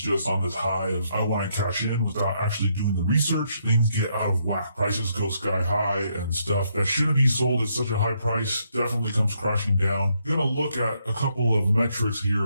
on this high of, I want to cash in without actually doing the research. Things get out of whack. Prices go sky high, and stuff that shouldn't be sold at such a high price definitely comes crashing down. We're going to look at a couple of metrics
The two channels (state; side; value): inverted; both; correlation -0.75